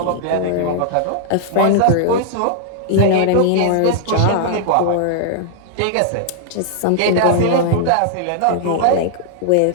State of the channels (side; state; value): both; different; correlation -0.01